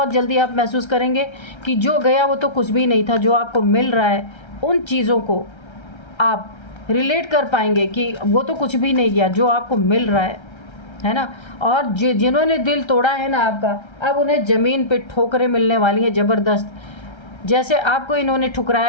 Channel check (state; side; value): late; right; 1.3 ms